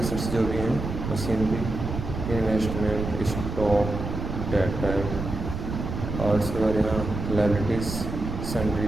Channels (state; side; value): noise; right; rumble, 5 dB below the sound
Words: जो भी हैं, मशीनरी, इन्वेस्टमेंट, स्टॉक, डेटर, और उसके बाद यहाँ liabilities, sundry